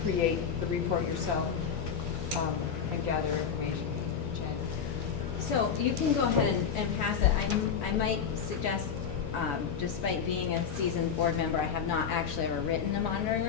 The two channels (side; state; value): right; quieter; 7.0 dB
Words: create the report yourself and gather information. So you can go ahead and pass it. I might suggest, despite being a seasoned board member, I have not actually ever written a monitoring